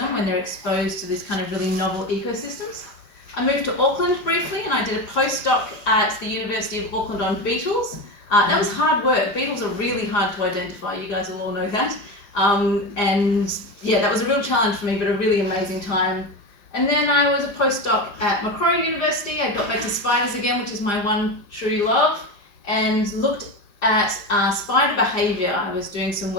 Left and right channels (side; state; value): right; late; 5.2 ms